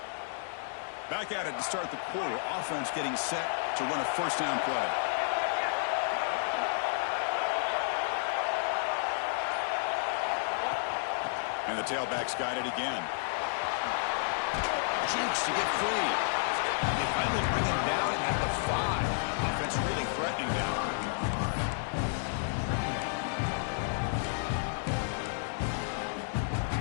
Back at it to start the quarter. Offense getting set to run a first down play. And the tailback's got it again. Jukes to get free. They finally bring him down at the 5. Offense really threatening now.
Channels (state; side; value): silent; right; digital silence